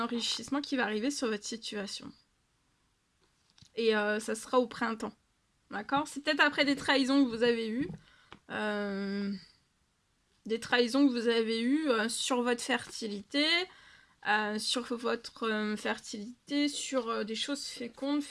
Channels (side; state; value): both; identical; correlation 1.00